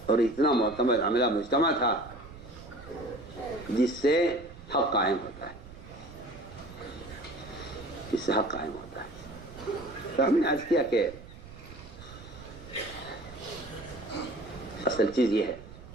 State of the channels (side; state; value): right; noise; rumble, 16 dB below the sound